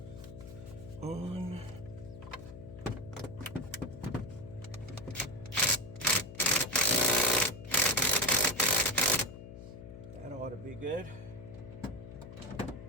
On. That ought be good.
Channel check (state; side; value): noise; left; hum, 13 dB below the sound